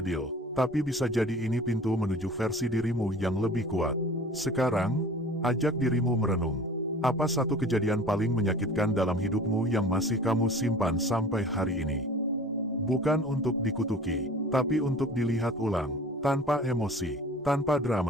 Tapi bisa jadi ini pintu menuju versi dirimu yang lebih kuat. Sekarang, ajak dirimu merenung. Apa satu kejadian paling menyakitkan dalam hidupmu yang masih kamu simpan sampai hari ini? Bukan untuk dikutuki, tapi untuk dilihat ulang, tanpa emosi, tanpa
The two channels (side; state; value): both; normal; correlation 0.43